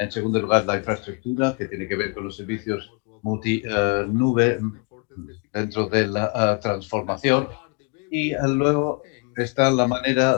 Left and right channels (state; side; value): quieter; right; 32.4 dB